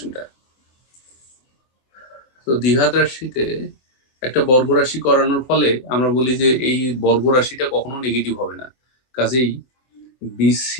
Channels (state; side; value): late; right; 24 ms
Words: তো দ্বিঘাত রাশিতে একটা বর্গ রাশি করানোর ফলে আমরা বলি যে এই বর্গ রাশিটা কখনো নেগেটিভ হবে না। কাজেই